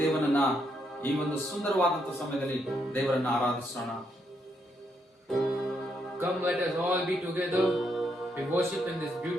ದೇವನನ್ನ ಈ ಒಂದು ಸುಂದರವಾದಂತ ಸಮಯದಲ್ಲಿ ದೇವರನ್ನ ಆರಾಧಿಸೋಣ. Come, let us all be together. We worship in this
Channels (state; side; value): normal; both; correlation 0.77